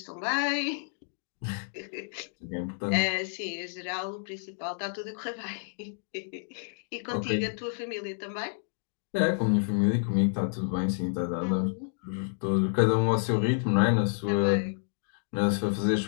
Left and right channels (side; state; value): right; silent; digital silence